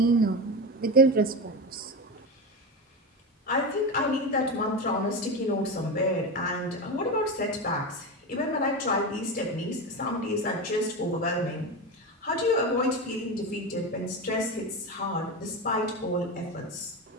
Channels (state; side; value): normal; both; correlation 0.20